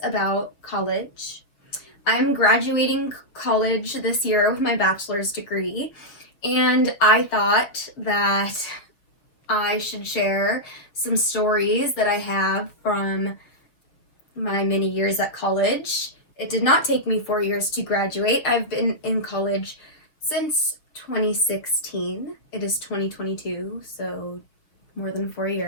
about college. I'm graduating college this year with my bachelor's degree, and I thought that I should share some stories that I have from my many years at college. It did not take me 4 years to graduate. I've been in college since 2016. It is 2022, so more than 4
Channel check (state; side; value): late; right; 6.8 ms